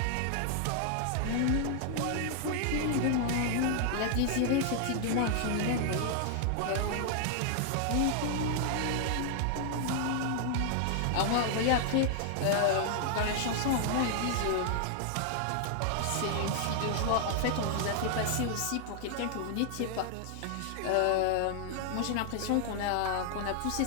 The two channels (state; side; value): different; both; correlation 0.00